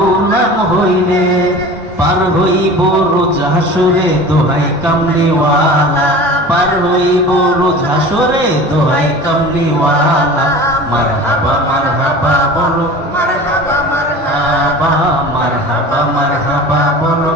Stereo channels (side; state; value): both; normal; correlation 0.38